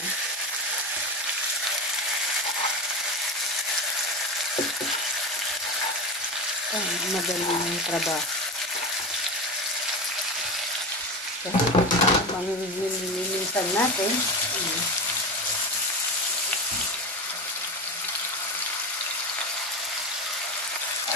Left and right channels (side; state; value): both; normal; correlation 0.22